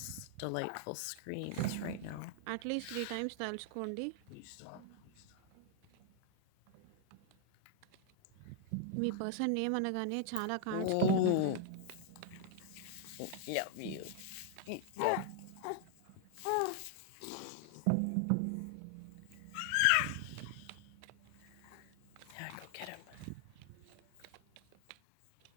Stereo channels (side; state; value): both; different; correlation 0.00